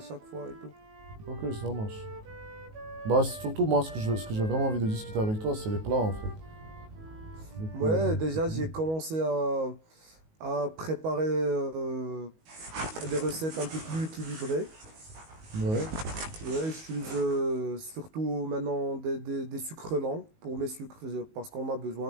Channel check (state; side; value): late; left; 19 ms